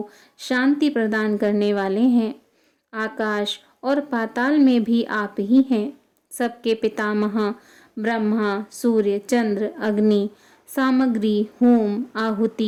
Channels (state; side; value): identical; both; correlation 1.00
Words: शांति प्रदान करने वाले हैं। आकाश और पाताल में भी आप ही हैं। सबके पितामह ब्रह्मा, सूर्य, चंद्र, अग्नि, सामग्री, होम,